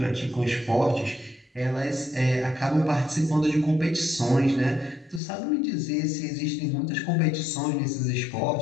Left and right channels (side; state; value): right; drops out; at 5.2 s